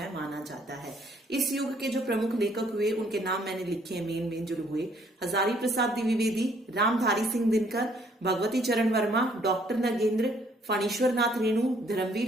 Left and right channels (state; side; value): normal; both; correlation 0.64